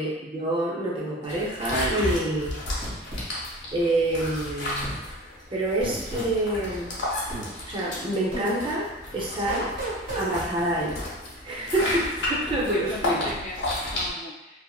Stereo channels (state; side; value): normal; both; correlation 0.33